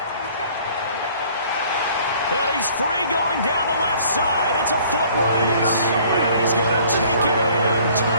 And he's free going down the left side. It's a foot race. And he's going to take it in.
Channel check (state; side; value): inverted; both; correlation -0.55